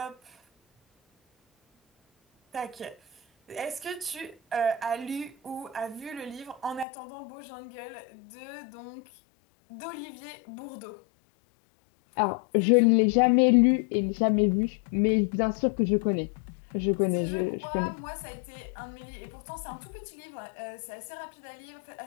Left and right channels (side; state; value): right; drops out; at 6.9 s